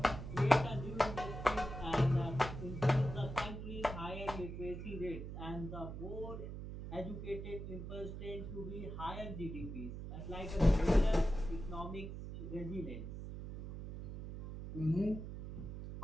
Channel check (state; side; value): noise; right; hum, 8 dB below the sound